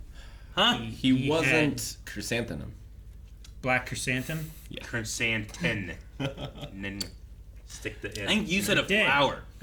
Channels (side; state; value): both; identical; correlation 1.00